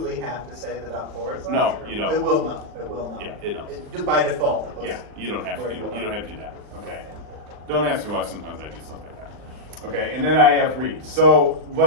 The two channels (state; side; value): late; left; 40 ms